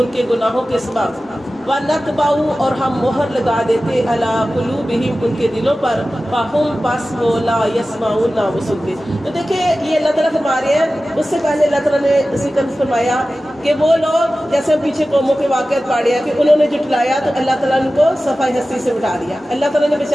کے گناہوں کے سبب وَنَتْبَعُ اور ہم مہر لگا دیتے عَلَىٰ قُلُوبِهِمْ ان کے دلوں پر فَهُمْ بس وہ لا يَسْمَعُونَ نہ وہ سنتے۔ تو دیکھیں یہ اللہ تعالیٰ فرما رہے ہیں، اس سے پہلے اللہ تعالیٰ نے ذکر فرمایا کہ وہ لوگ جیسے پیچھے قوموں کے واقعات پڑھے ہیں کہ انہوں نے جھٹلایا تو اللہ تعالیٰ نے ان کو صفحہ ہستی سے اٹھا دیا۔ اللہ تعالیٰ نے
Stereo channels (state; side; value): normal; both; correlation 0.95